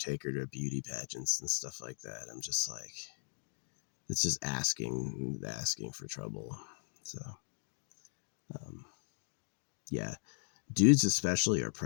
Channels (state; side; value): silent; right; digital silence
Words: her to beauty pageants and stuff like that. I'm just like, it's just asking for trouble. So, yeah. Dudes especially are